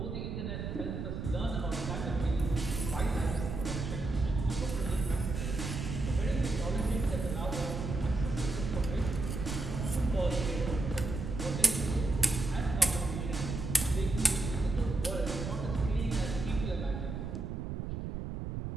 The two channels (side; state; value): right; noise; rumble, 4 dB below the sound